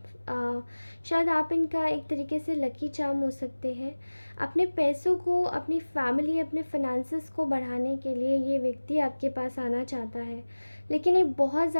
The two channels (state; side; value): inverted; both; correlation -1.00